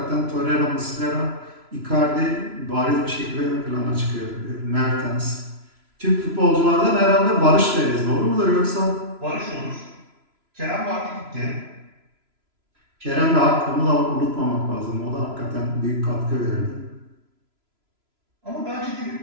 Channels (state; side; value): late; left; 3.0 ms